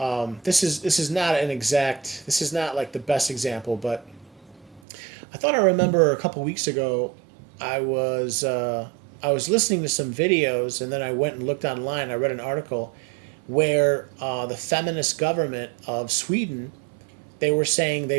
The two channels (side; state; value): left; drops out; at 4.8 s